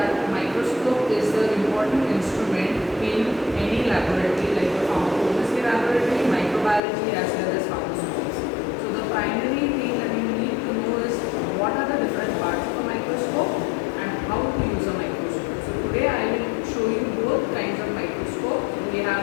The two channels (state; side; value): drops out; right; at 6.8 s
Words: microscope is the important instrument in any laboratory, like the pharmacology laboratory, microbiology, as well as pharmaceuticals. So, the primary thing that you need to know is what are the different parts of a microscope and how to use a microscope. So, today I will show you both kinds of microscope. We